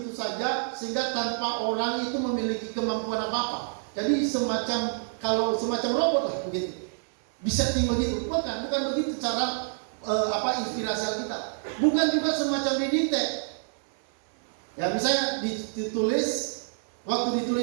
saja sehingga tanpa orang itu memiliki kemampuan apa-apa. Jadi semacam robot lah begitu. Bisa tinggal begitu. Bukan begitu cara inspirasi Alkitab. Bukan juga semacam didikte. Ya misalnya ditulis, waktu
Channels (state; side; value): silent; left; 60 dB below the other